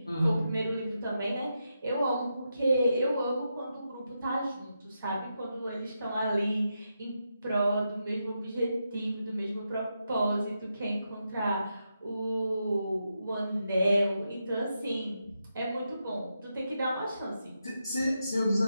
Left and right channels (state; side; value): inverted; both; correlation -0.85